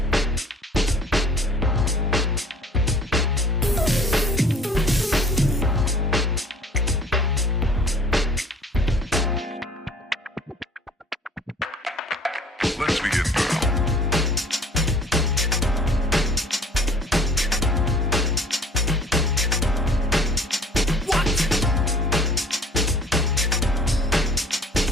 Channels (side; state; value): both; normal; correlation 0.51